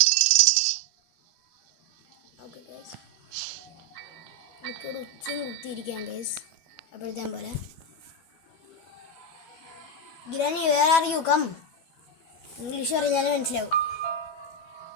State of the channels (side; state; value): right; late; 12 ms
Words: എനിക്കൊരു ഉച്ചയും കുത്തിയിരിക്കാം ഗൈസ്. അപ്പോഴത്തെ പോലെ granny where are you come. English പറഞ്ഞാലും മനസ്സിലാവും.